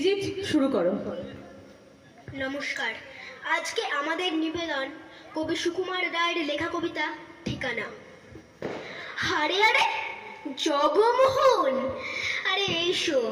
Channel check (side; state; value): both; identical; correlation 1.00